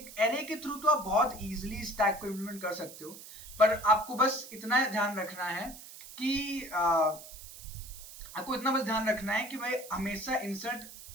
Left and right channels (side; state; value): right; noise; hiss, 15 dB below the sound